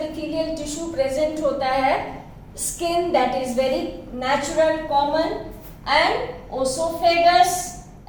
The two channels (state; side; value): identical; both; correlation 1.00